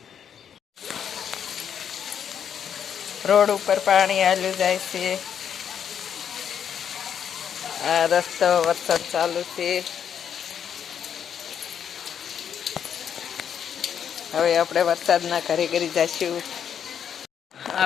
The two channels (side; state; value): right; quieter; 8.4 dB